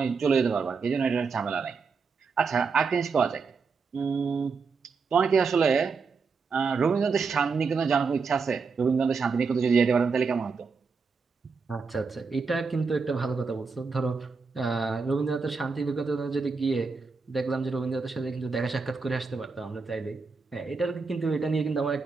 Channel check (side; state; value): left; quieter; 4.9 dB